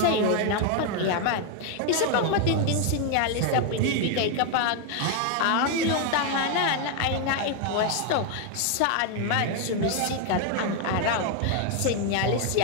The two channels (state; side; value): different; both; correlation 0.01